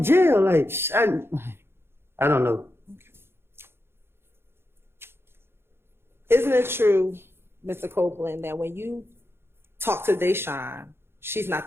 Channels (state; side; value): late; left; 0.11 ms